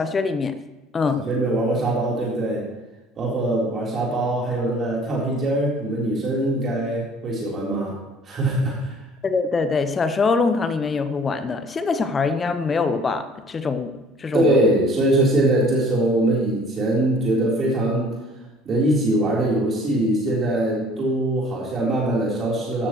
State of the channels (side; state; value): both; normal; correlation 0.53